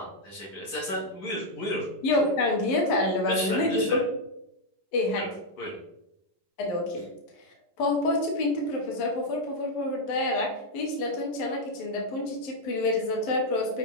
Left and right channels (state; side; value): late; right; 11 ms